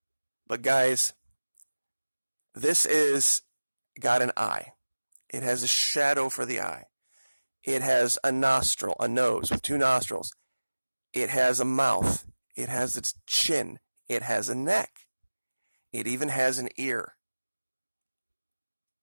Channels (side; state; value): both; inverted; correlation -1.00